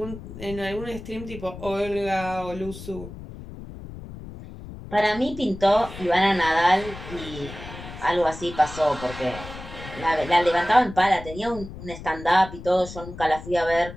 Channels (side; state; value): left; noise; rumble, 13 dB below the sound